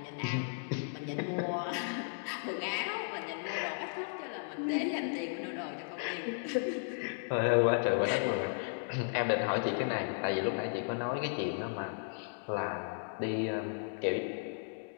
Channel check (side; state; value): right; silent; digital silence